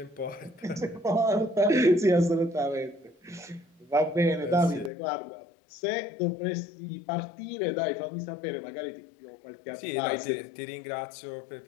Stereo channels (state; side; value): drops out; right; at 4.9 s